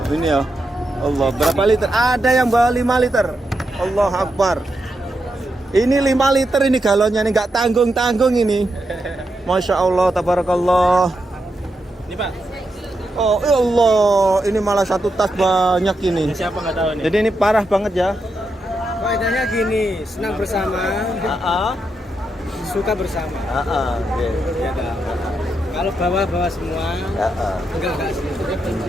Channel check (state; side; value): normal; both; correlation 0.84